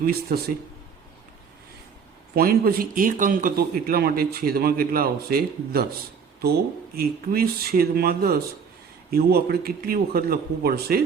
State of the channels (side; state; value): left; quieter; 6.3 dB